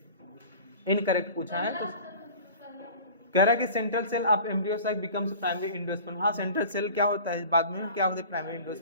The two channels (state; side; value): inverted; both; correlation -0.41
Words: इनकरेक्ट पूछा है। तो कह रहा है कि central cell of embryo sac becomes primary endosperm. हाँ सेंट्रल सेल क्या होता है? बाद में क्या होता है? प्राइमरी